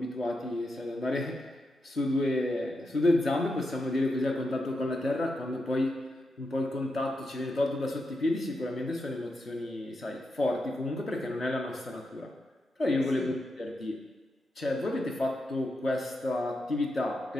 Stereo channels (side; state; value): both; normal; correlation 0.86